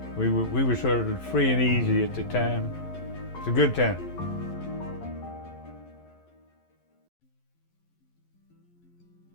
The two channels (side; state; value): right; late; 11 ms